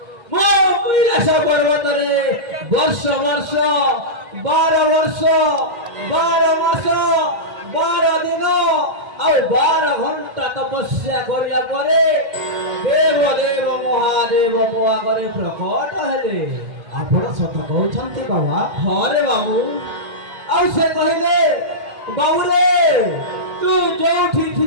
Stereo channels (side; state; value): left; late; 2.1 ms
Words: मो कैलाश पर्वत रे वर्ष वर्ष 12 वर्ष 12 मास 12 दिन ଆଉ 12 ଘଣ୍ଟା ତପସ୍ୟା କରିବା ପରେ ଦେବ ଦେବ ମହାଦେବ ମୋ ଆଗରେ ପ୍ରକଟ ହେଲେ। ଆପଣ ସତ କହୁଛନ୍ତି ବାବା? ହଁ ରେ ବାବୁ। ଆଉ ସେ କହିଲେ ବାବୁ ରେ ତୁ ଯୋଉଠି